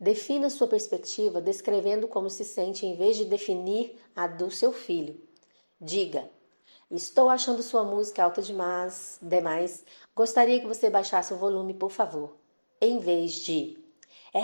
sua perspectiva descrevendo como se sente em vez de definir a do seu filho. Diga: estou achando sua música alta demais. Gostaria que você baixasse o volume, por favor. Em vez de:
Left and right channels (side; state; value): both; inverted; correlation -1.00